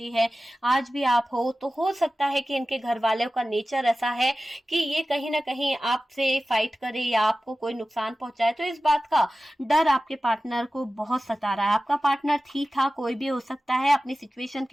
है, आज भी आप हो, तो हो सकता है कि इनके घर वालों का नेचर ऐसा है कि ये कहीं ना कहीं आपसे फाइट करे या आपको कोई नुकसान पहुंचाए। तो इस बात का डर आपके पार्टनर को बहुत सता रहा है। आपका पार्टनर ठीक था, कोई भी हो सकता है, अपनी सिचुएशन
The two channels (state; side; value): normal; both; correlation 0.95